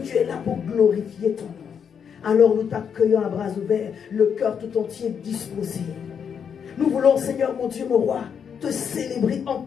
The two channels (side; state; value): right; quieter; 7.3 dB